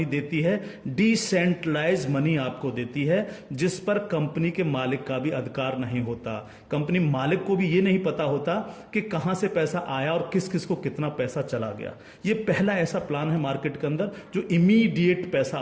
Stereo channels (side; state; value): both; identical; correlation 1.00